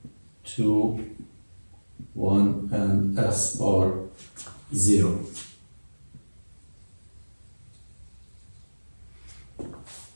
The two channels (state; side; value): inverted; both; correlation -1.00